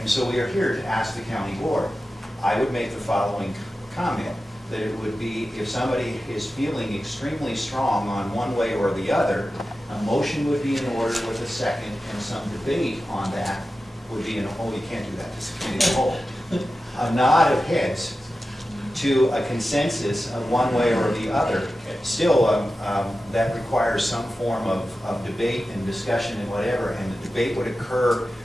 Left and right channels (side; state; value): both; normal; correlation 0.93